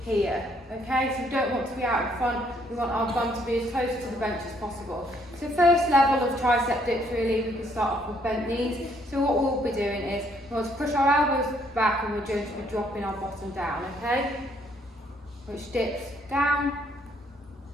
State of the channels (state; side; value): normal; both; correlation 0.68